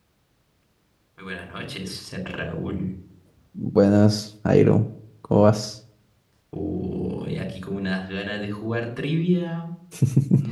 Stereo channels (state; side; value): identical; both; correlation 1.00